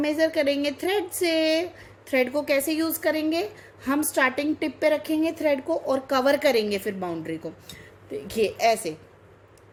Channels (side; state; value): both; identical; correlation 1.00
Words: करेंगे थ्रेड से। थ्रेड को कैसे यूज़ करेंगे, हम स्टार्टिंग टिप पे रखेंगे थ्रेड को और कवर करेंगे फिर बाउंड्री को। देखिए ऐसे,